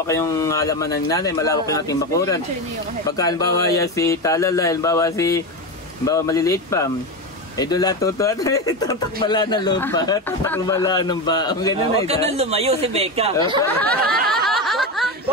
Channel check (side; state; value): both; normal; correlation 0.17